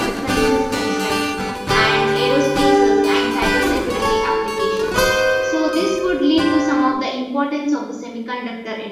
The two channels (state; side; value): identical; both; correlation 1.00